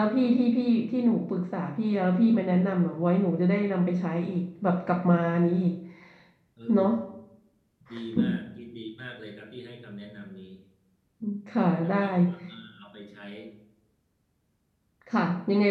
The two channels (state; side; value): identical; both; correlation 1.00